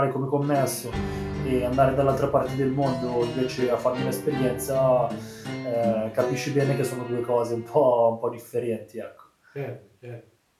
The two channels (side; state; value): both; identical; correlation 1.00